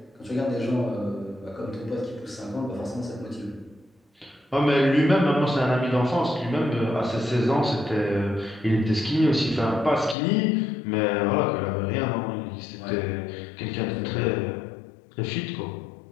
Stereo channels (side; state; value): right; drops out; at 10.2 s